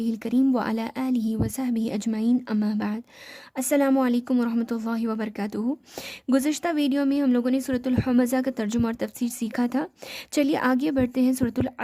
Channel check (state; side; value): identical; both; correlation 1.00